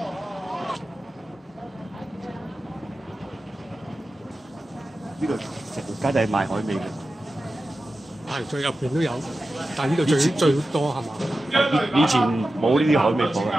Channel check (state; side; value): normal; both; correlation 0.93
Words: 呢度成條街就係賣海味嘅，係最入邊都有，但係呢度最多係嘛？以前冇呢啲海味鋪